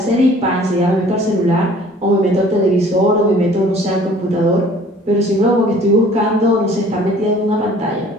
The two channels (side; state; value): both; normal; correlation 0.52